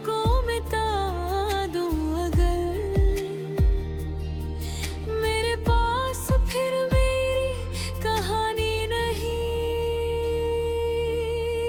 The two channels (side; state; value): both; identical; correlation 1.00